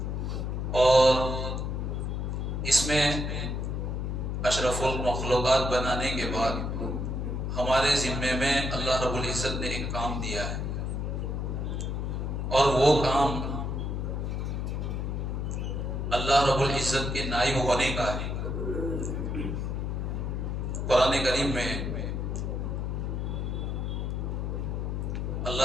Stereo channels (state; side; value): noise; left; hum, 1 dB below the sound